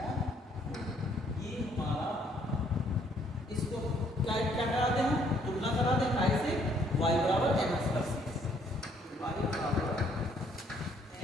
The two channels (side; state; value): both; normal; correlation 0.65